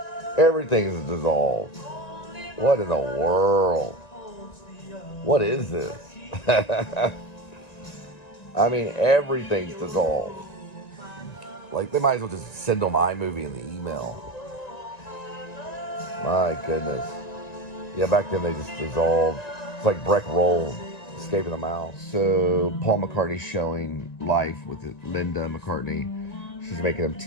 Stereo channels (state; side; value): late; right; 1.9 ms